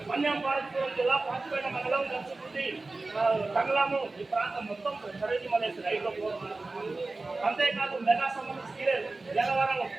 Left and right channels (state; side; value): quieter; left; 3.4 dB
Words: మన్యంపాలపురం జిల్లా పాచిపేట మండలం, నర్సుపూడి, కంగళము ఈ ప్రాంతం మొత్తం సరైన మలేసి రైల్లో పోతుంది. అంతేకాదు మెగా సంబంధించి సీలేరు, జనవరం,